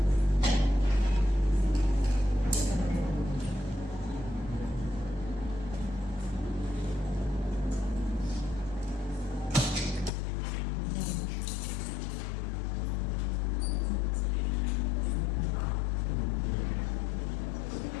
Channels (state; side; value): drops out; right; at 10.1 s